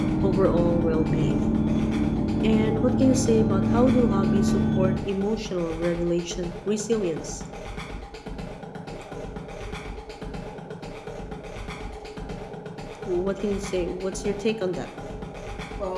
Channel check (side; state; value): both; identical; correlation 1.00